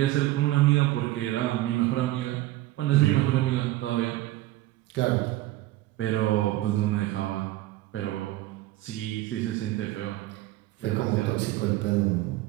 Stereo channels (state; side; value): quieter; left; 16.3 dB